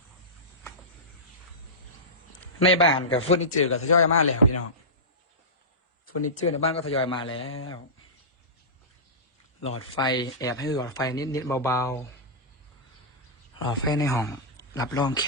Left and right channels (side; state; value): both; normal; correlation -0.17